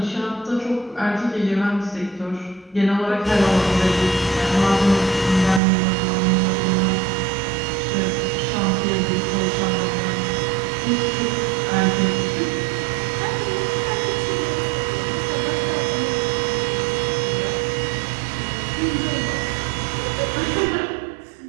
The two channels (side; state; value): left; drops out; at 5.6 s